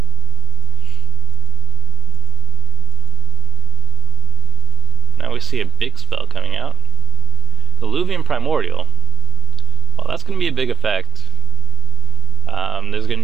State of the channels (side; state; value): left; quieter; 4.8 dB